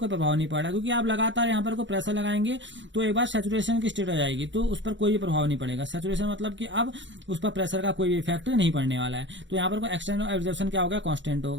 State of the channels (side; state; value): left; late; 0.54 ms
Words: प्रभाव नहीं पड़ रहा। क्योंकि आप लगातार यहाँ पर को प्रेशर लगाएंगे तो एक बार सैचुरेशन की स्टेट आ जाएगी, तो उस पर कोई भी प्रभाव नहीं पड़ेगा। सैचुरेशन मतलब कि अब उस पर प्रेशर का कोई भी इफेक्ट नहीं पड़ने वाला है। तो यहाँ पर को एक्सटेंट ऑफ एब्जॉर्प्शन क्या हो गया, कांस्टेंट हो